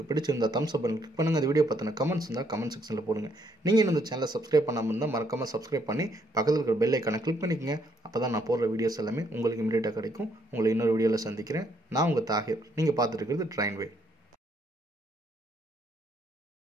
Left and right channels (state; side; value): normal; both; correlation 0.70